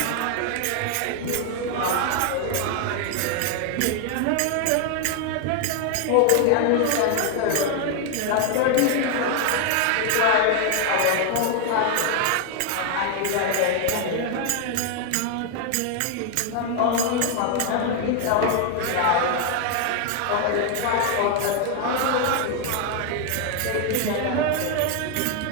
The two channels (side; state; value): both; different; correlation 0.01